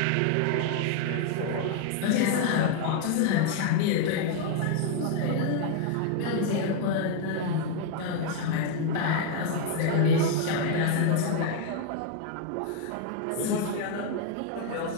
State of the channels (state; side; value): different; both; correlation 0.00